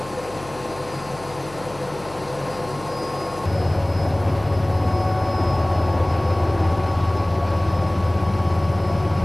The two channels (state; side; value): noise; left; hum, 19 dB below the sound